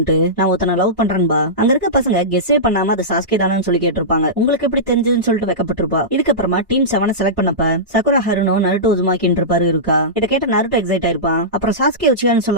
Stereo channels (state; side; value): normal; both; correlation -0.16